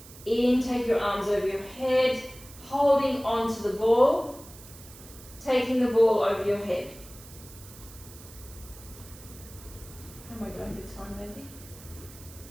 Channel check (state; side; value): noise; right; hiss, 18 dB below the sound